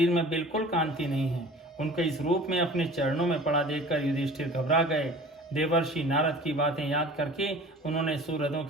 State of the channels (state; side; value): normal; both; correlation 0.43